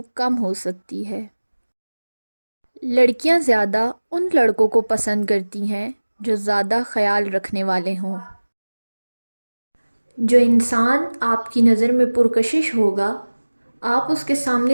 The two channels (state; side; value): inverted; both; correlation -1.00